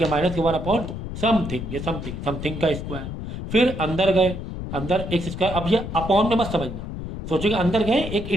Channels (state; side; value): noise; left; rumble, 7 dB below the sound